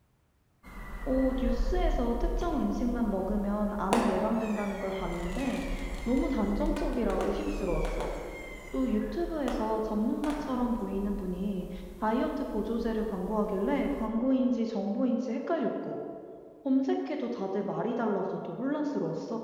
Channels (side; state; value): both; identical; correlation 1.00